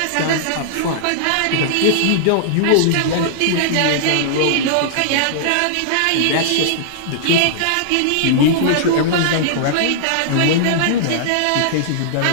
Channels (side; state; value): both; different; correlation -0.02